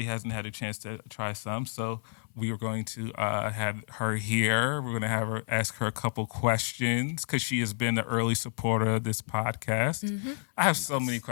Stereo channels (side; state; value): right; silent; 58 dB below the other